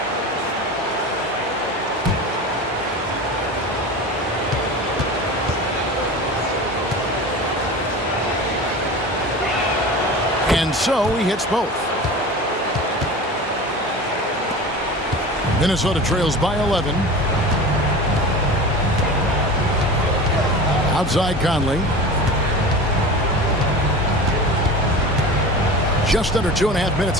And so he hits both. Minnesota trails by 11. Outside Conley. Just under 2.5 minutes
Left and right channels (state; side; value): normal; both; correlation 0.33